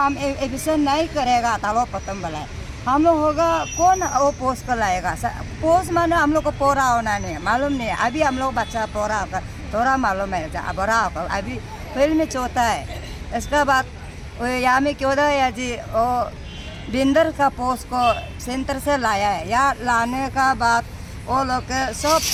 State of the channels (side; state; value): both; identical; correlation 1.00